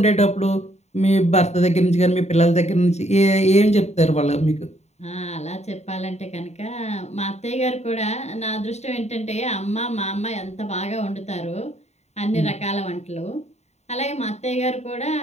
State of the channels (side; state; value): right; late; 0.32 ms